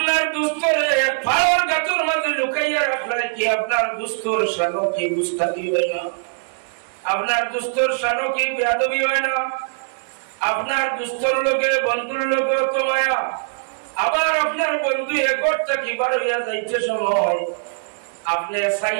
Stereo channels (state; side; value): silent; left; digital silence